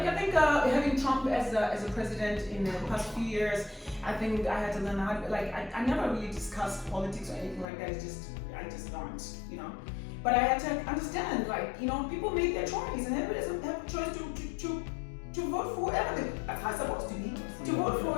I think having Trump as a president in the past few years, I think I had to learn how to, I never really discussed politics or anything like that. I just don't, But I had to understand, people make their choice, and everybody has a choice to vote for whoever they're supposed to be, to vote for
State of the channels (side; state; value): right; drops out; at 7.7 s